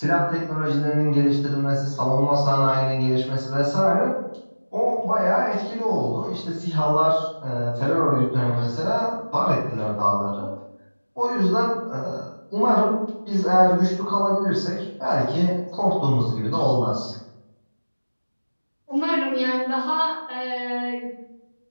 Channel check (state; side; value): inverted; both; correlation -1.00